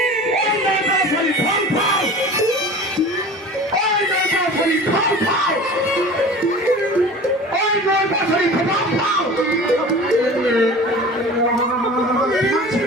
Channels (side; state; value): both; normal; correlation 0.39